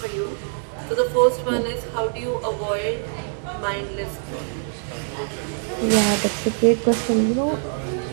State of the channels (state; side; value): silent; left; 63 dB below the other